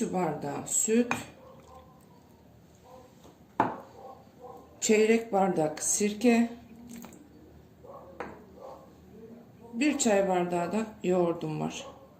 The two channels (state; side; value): identical; both; correlation 1.00